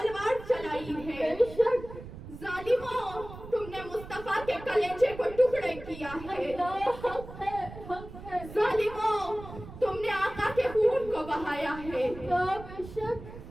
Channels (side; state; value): right; noise; rumble, 14 dB below the sound